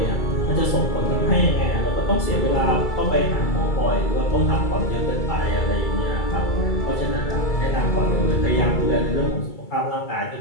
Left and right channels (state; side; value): late; right; 2.3 ms